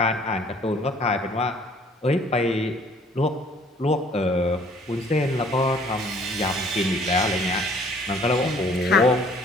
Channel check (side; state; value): both; normal; correlation 0.56